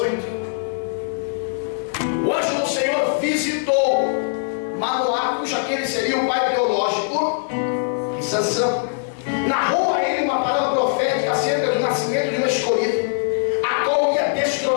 O anjo do Senhor visitou Manoá, cujo aquele seria o pai biológico de Sansão, narrou a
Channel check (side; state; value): right; silent; digital silence